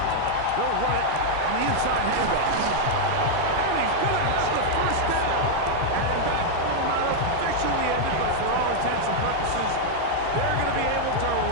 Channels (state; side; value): different; both; correlation 0.00